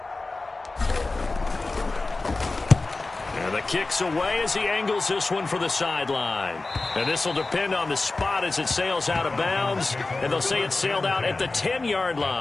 And the kick's away as he angles this one for the sideline. And this will depend on the spot as it sails out of bounds. And they'll say it sailed out at the 10-yard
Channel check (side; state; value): right; quieter; 3.4 dB